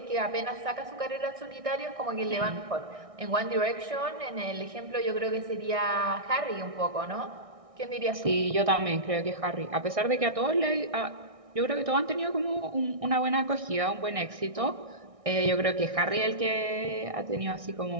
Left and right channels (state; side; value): late; left; 1.6 ms